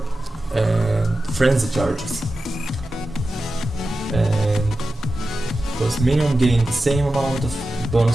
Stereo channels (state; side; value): normal; both; correlation 0.93